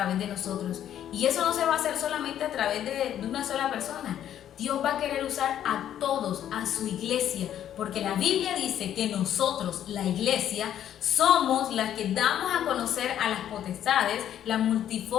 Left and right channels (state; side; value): quieter; right; 10.7 dB